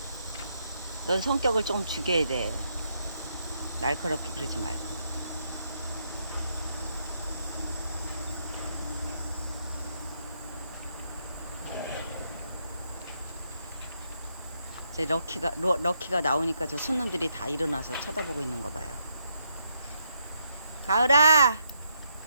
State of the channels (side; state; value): both; inverted; correlation -0.77